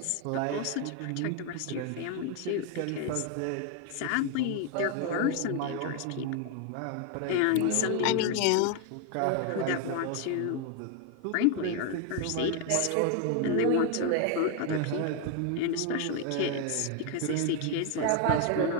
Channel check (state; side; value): different; both; correlation 0.01